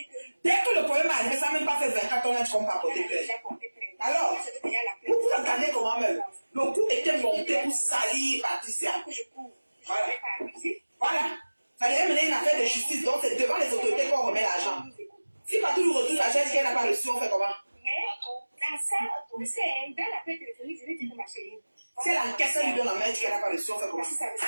Dès que le problème arrive, ça n'a même pas fait 24 ans, tu comprends porter plainte. Alors, vous entendez comment même? Le coup était monté pour salir Patricia. Voilà. Voilà. Ça devait mener une affaire de justice, donc c'est devant les autorités qu'on remet l'argent. Si Patou lui retrouve l'argent, est-ce qu'elle n'a pas reçu, on fait comment? Mais dans ça, c'est dans l'appel téléphonique, je vais dire que ma chérie. Si elle encaisse, elle lui donne la main, elle dit qu'elle n'a pas reçu, on fait comment? Si ça veut dire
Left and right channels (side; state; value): both; inverted; correlation -1.00